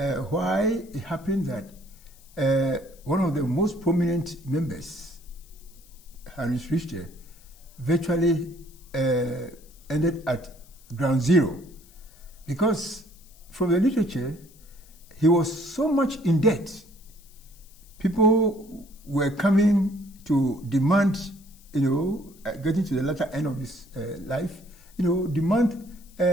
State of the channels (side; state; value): left; noise; hiss, 26 dB below the sound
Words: Why it happened that one of the most prominent members, Heinrich Richter, virtually ended at ground zero, because from the literature, he was so much in debt. People were coming to demand, getting to the latter end of his life, demand